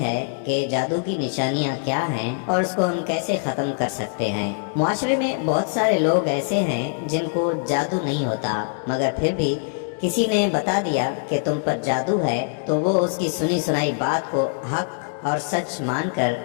کہ جادو کی نشانیاں کیا ہیں اور اس کو ہم کیسے ختم کر سکتے ہیں۔ معاشرے میں بہت سارے لوگ ایسے ہیں جن کو جادو نہیں ہوتا، مگر پھر بھی کسی نے بتا دیا کہ تم پر جادو ہے تو وہ اس کی سنی سنائی بات کو حق اور سچ مان کر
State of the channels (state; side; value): silent; right; digital silence